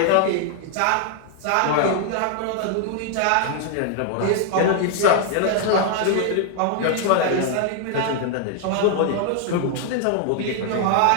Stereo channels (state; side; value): different; both; correlation 0.00